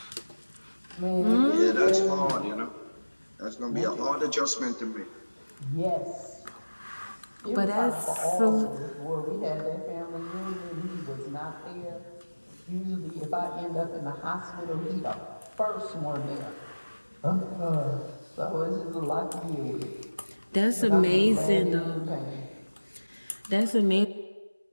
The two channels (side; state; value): both; inverted; correlation -1.00